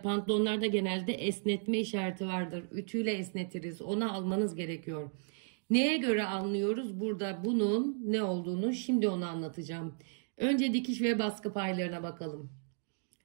pantolonlarda genelde esnetme işareti vardır. Ütüyle esnetiriz. Onu almanız gerekiyor. Neye göre anlıyoruz? Burada bunun ne olduğunu şimdi onu anlatacağım. Önce dikiş ve baskı paylarına bakalım.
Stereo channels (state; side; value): silent; left; digital silence